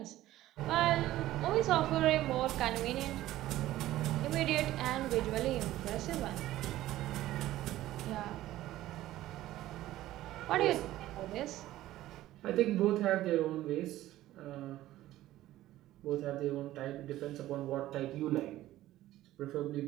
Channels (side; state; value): left; quieter; 14.9 dB